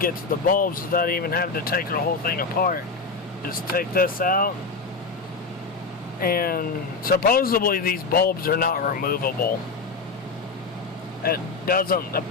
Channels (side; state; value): right; quieter; 4.3 dB